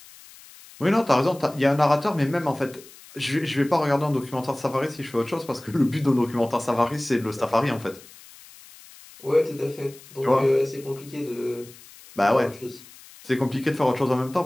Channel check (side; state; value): left; noise; hiss, 21 dB below the sound